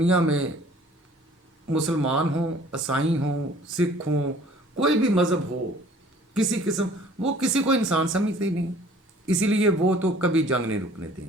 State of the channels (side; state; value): both; normal; correlation 0.53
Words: में मुसलमान हों, ईसाई हों, सिख हों, कोई भी मज़हब हो, किसी किस्म, वो किसी को इंसान समझते ही नहीं। इसीलिए वो तो कभी जंग नहीं रुकने